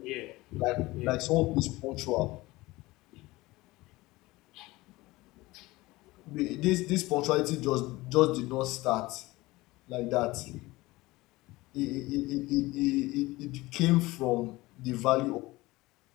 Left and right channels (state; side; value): quieter; right; 20.2 dB